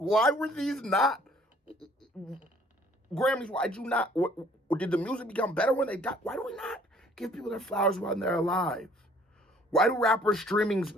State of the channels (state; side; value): normal; both; correlation 0.58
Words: were these not Grammys? Why'd you not, did the music become better when they died? Why do we not give people their flowers while they're alive? Why do rappers' streaming